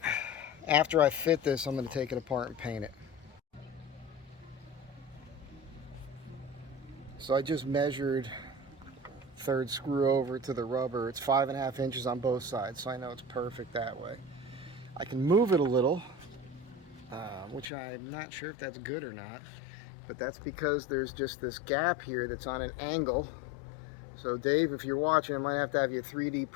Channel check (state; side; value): drops out; right; at 17.7 s